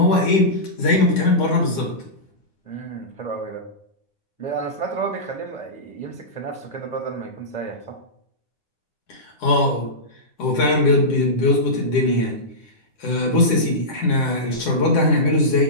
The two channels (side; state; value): right; late; 10 ms